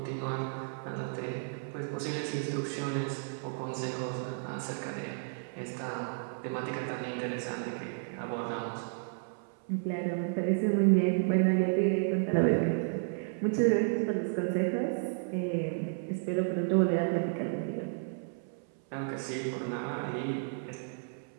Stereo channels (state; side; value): silent; left; 56 dB below the other